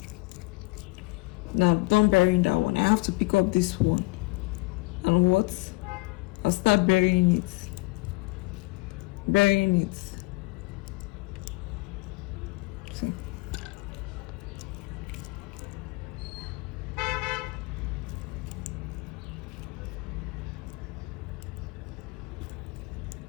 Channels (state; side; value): quieter; right; 25.0 dB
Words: now don't bury that one, I have to pick up this one, and what, I'll start burying it. cutting.